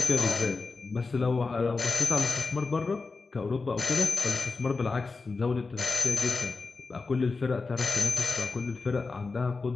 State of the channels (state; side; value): quieter; right; 4.1 dB